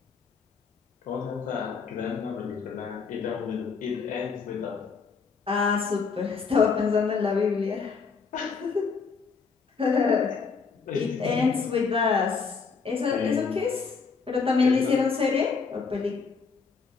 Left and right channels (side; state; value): right; quieter; 5.2 dB